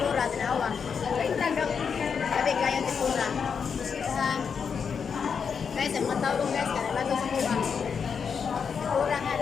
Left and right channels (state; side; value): quieter; right; 6.4 dB